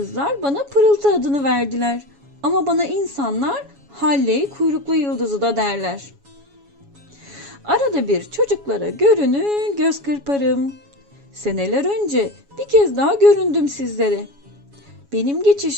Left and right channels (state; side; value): late; left; 7.2 ms